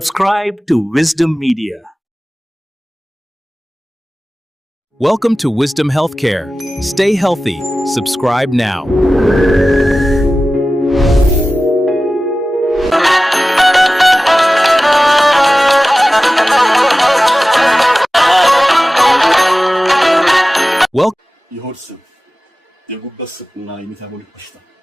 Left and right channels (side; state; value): both; normal; correlation 0.95